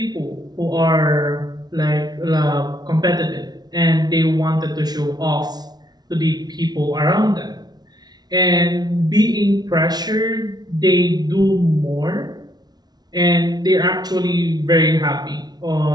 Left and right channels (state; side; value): late; left; 0.19 ms